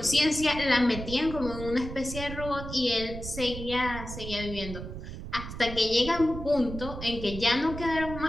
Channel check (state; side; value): noise; right; rumble, 9 dB below the sound